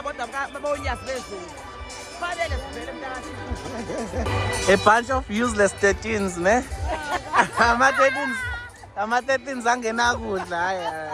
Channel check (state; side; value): identical; both; correlation 1.00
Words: kodwa babonyazi bezulu fanele sivele mhlaka-Thixo. A bunch of useless 13s ne ama-13s angena kudla hayi